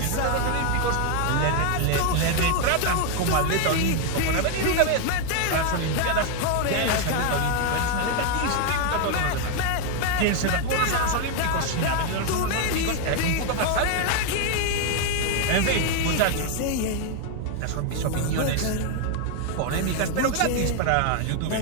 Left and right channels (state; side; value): different; both; correlation 0.01